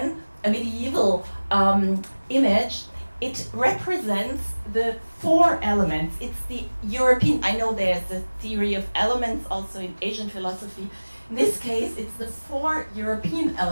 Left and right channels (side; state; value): both; inverted; correlation -1.00